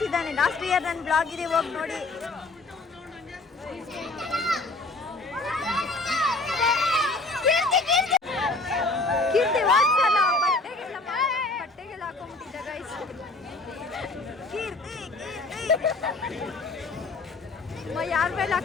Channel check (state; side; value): quieter; right; 3.3 dB